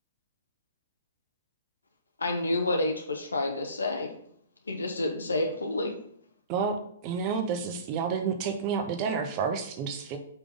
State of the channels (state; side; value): inverted; both; correlation -0.42